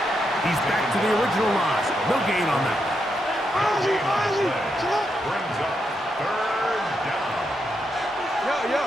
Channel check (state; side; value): normal; both; correlation 0.82